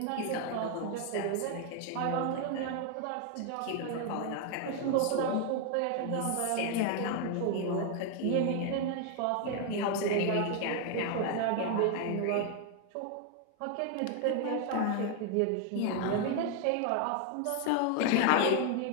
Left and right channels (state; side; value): different; both; correlation 0.01